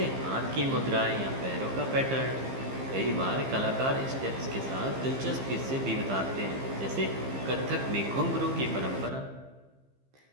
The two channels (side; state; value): left; late; 15 ms